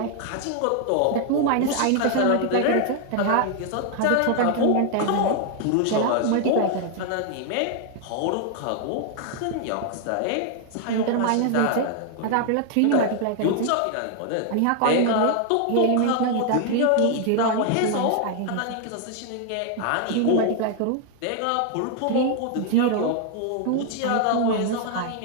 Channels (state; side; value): different; both; correlation 0.00